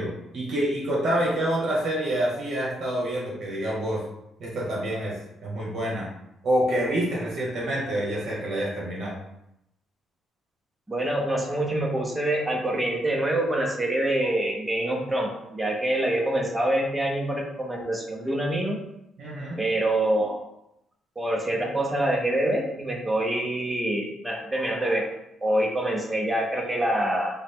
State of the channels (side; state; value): both; normal; correlation 0.80